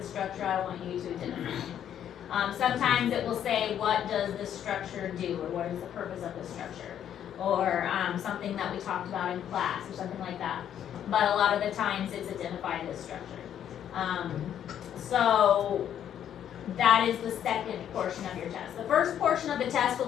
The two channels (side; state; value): right; quieter; 9.9 dB